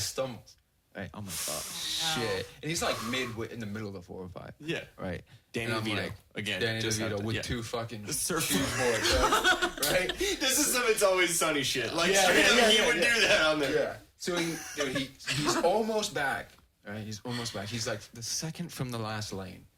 stumbles. Right? I'm like, oh shit! And he's like in the middle of the 405. Yeah. Right. Danny And I'm DeVito like, again. Danny just DeVito happened, with yeah. two fucking surfboards. right? This is some It's Always Sunny shit. Like Yeah, straight up, yeah, he yeah, would yeah. do that on there. Yeah. So he's almost back. Right? He's almost back. He's like the second from the last lane.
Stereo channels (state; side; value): identical; both; correlation 1.00